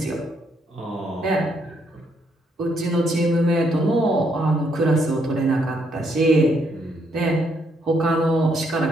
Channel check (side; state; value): both; normal; correlation 0.73